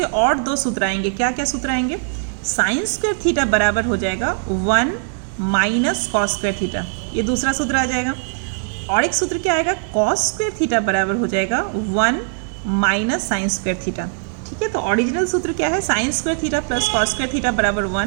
और दो सूत्र आएंगे। क्या क्या सूत्र आएंगे? साइन स्क्वायर थीटा बराबर हो जाएगा 1 माइनस कॉस स्क्वायर थीटा, ये दूसरा सूत्र आ जाएगा। और एक सूत्र क्या आएगा, कॉस स्क्वायर थीटा बराबर हो जाएगा 1 माइनस साइन स्क्वायर थीटा। ठीक है, तो ओरिजिनल सूत्र क्या है, sign square theta plus cos square theta बराबर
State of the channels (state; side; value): silent; left; digital silence